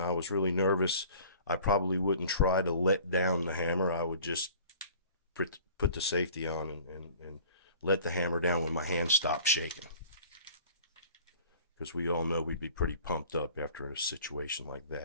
I was really nervous, I probably wouldn't try to let down the hammer. I would just put the safety on and let the hammer down when my hand stopped shaking. Because we all know we'd be pretty pumped up after a situation like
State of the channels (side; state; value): both; inverted; correlation -0.47